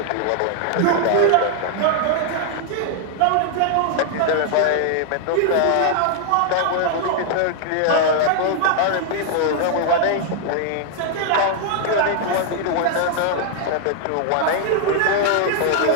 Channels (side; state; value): both; different; correlation 0.00